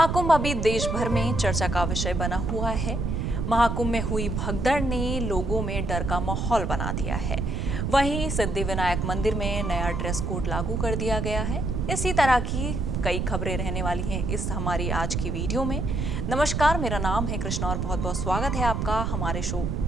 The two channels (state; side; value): noise; right; rumble, 1 dB below the sound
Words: महाकुंभ अभी देश भर में चर्चा का विषय बना हुआ है। महाकुंभ में हुई भगदड़ ने लोगों में डर का माहौल बना दिया है। वहीं सिद्धिविनायक मंदिर में नया ड्रेस कोड लागू कर दिया गया है। इसी तरह की कई खबरें रहने वाली हैं इस हमारी आज की वीडियो में। नमस्कार, मेरा नाम है कृष्णा और बहुत बहुत स्वागत है आपका हमारे शो